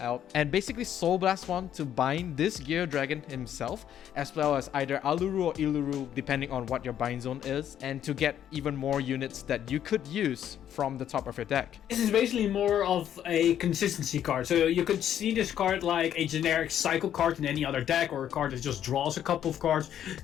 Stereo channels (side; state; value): right; quieter; 10.3 dB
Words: and basically Soul Blast one to bind this Gear Dragon himself, as well as either Aluru or Iluru depending on what your bind zone is, and to get even more units that you could use from the top of your deck. This is basically more of a consistency card. So you could see this card like a generic cycle card in any other deck, or a card that just draws a couple of cards,